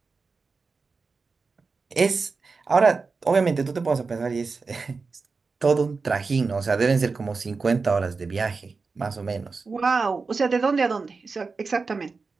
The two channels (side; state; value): left; quieter; 4.4 dB